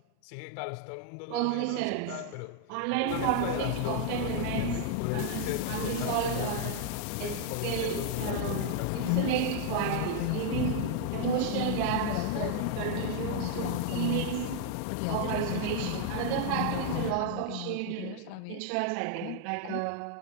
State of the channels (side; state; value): both; different; correlation 0.00